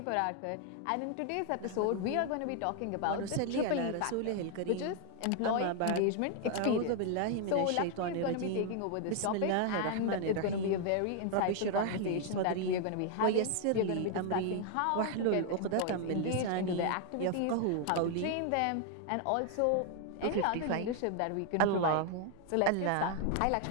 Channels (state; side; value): different; both; correlation 0.00